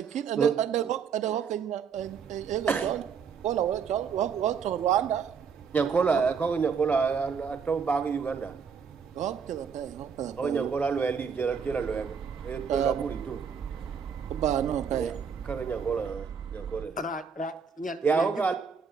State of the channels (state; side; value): quieter; left; 6.4 dB